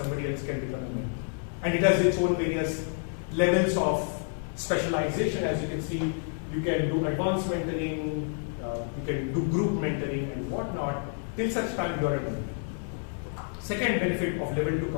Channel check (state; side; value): silent; right; 59 dB below the other